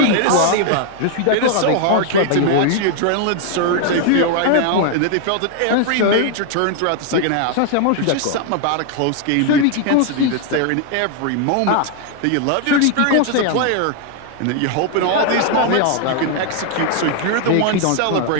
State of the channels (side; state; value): both; different; correlation 0.00